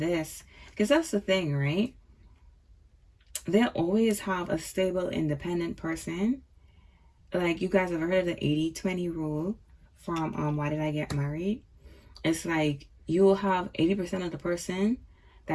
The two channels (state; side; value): identical; both; correlation 1.00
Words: because that's the thing, right? They'll always have a stable, independent person. Like, you guys have heard of the 80-20 rule from Why Did I Get Married? It's like you'll have 80% of the person